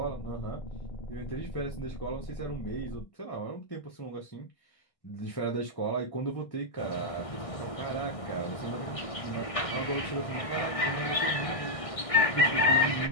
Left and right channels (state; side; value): late; right; 1.6 ms